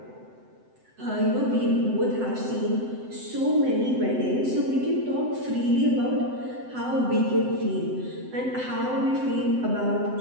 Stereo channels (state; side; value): late; left; 7.8 ms